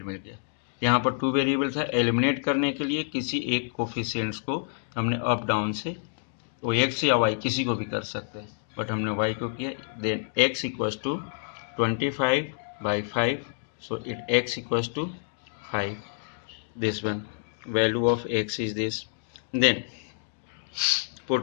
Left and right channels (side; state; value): right; silent; digital silence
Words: मिल गया, यहाँ पर टू वेरिएबल था, एलिमिनेट करने के लिए किसी एक कोफिशिएंट्स को हमने अप डाउन से, वो x या y किसी को भी कर सकते हैं, बट हमने y को किया। Then x equals to 25 by 5, so it x equals to 5, this one value of x is this, then